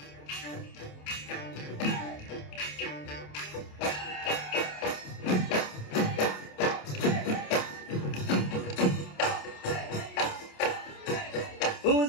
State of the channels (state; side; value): late; right; 27 ms